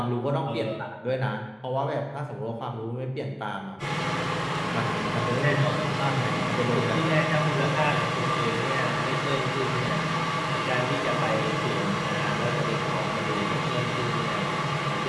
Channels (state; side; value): identical; both; correlation 1.00